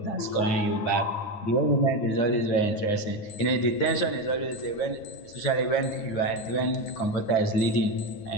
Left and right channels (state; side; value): late; right; 9.6 ms